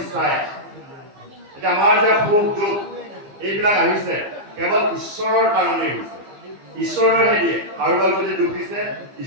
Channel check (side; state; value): left; late; 15 ms